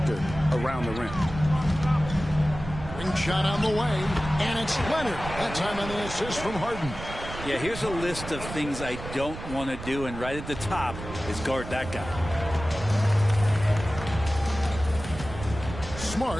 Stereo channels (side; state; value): right; noise; rumble, 10 dB below the sound